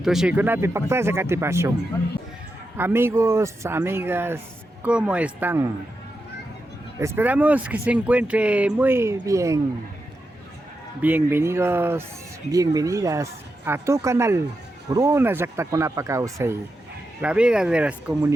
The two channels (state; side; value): normal; both; correlation 0.88